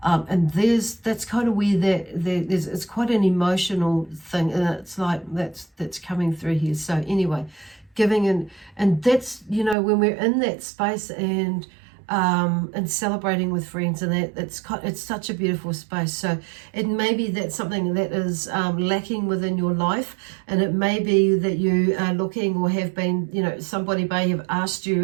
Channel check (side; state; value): left; drops out; at 9.8 s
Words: And that's kind of where there's, it's quite an emotional thing, and it's like that's coming through here. So anyway, giving and that's, you know, when we're in that space and celebrating with friends, and that it's such a beautiful space. So it may be that something that is lacking within your life, and it may be that you are looking or have been, you know, somebody may have asked